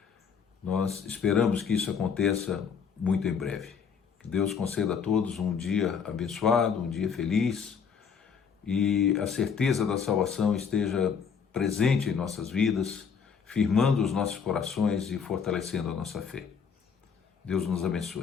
Nós esperamos que isso aconteça muito em breve. Que Deus conceda a todos um dia abençoado, um dia feliz e a certeza da salvação esteja presente em nossas vidas, firmando os nossos corações e fortalecendo a nossa fé. Deus nos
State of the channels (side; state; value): right; quieter; 6.5 dB